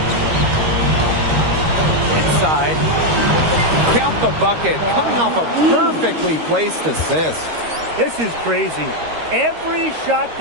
Inside. Count the bucket. Coming off a perfectly placed assist. This is crazy. Every shot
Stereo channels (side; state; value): left; late; 13 ms